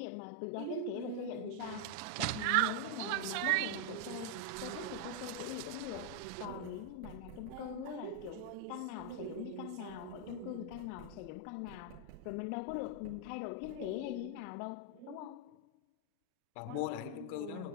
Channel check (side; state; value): both; different; correlation 0.00